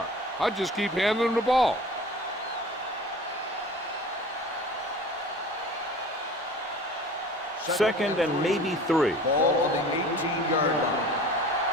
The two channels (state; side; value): normal; both; correlation 0.42